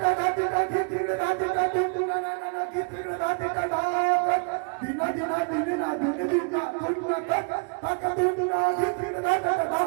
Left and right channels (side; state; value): left; quieter; 36.4 dB